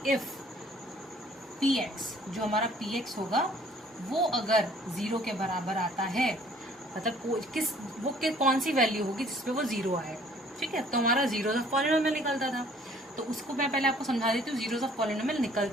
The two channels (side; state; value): both; normal; correlation 0.56